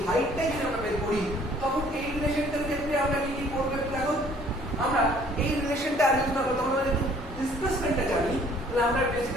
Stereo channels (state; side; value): normal; both; correlation 0.57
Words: হাইটটাই যদি আমরা বের করি, তখন এই রিলেশনটার ক্ষেত্রে আমরা কি কি করবো দেখো। আমরা এই রিলেশনটা ইউজ না করতে, আমরা যদি ডিসপ্লেসমেন্টটা জানি, তাহলে আমরা